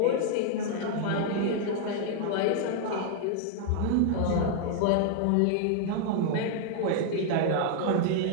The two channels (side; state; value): both; different; correlation 0.00